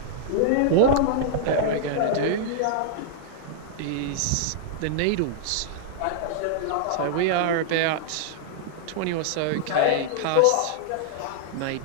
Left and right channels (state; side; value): different; both; correlation -0.01